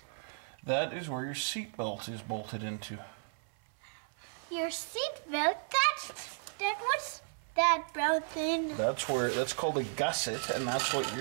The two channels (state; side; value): silent; left; 55 dB below the other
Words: That is where your seat belt is bolted into. Your seat belt? What's that brown thing? That's called a gusset, and that's what